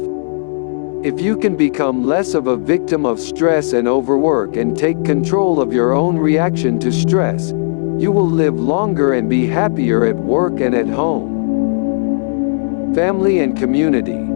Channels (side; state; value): right; silent; digital silence